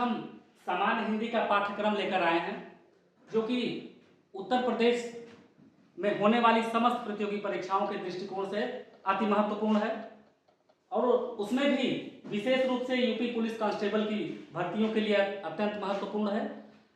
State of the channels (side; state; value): both; identical; correlation 1.00